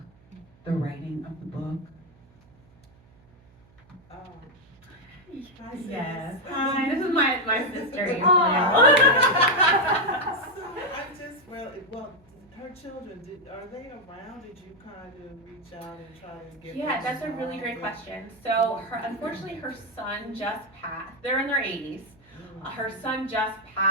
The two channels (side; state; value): right; noise; hum, 29 dB below the sound